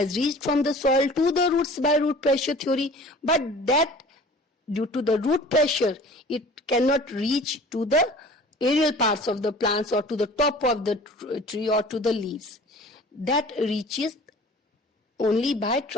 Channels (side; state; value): both; normal; correlation 0.45